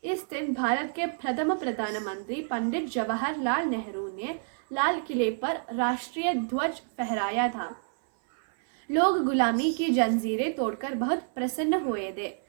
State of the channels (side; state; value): left; silent; 59 dB below the other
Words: इस दिन भारत के प्रथम प्रधानमंत्री पंडित जवाहरलाल नेहरू ने लाल किले पर राष्ट्रीय ध्वज फहराया था। लोग गुलामी की जंजीरें तोड़कर बहुत प्रसन्न हुए थे।